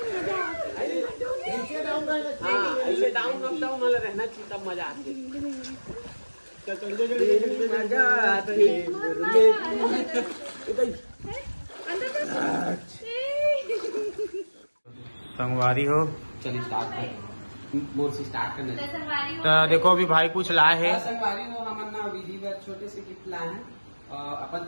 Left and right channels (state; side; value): inverted; both; correlation -1.00